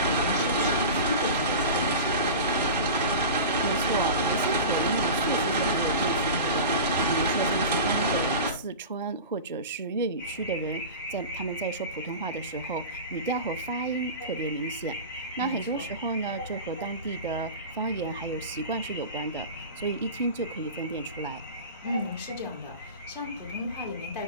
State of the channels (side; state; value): both; inverted; correlation -0.31